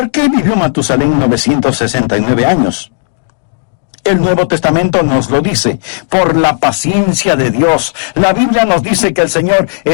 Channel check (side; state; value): right; silent; digital silence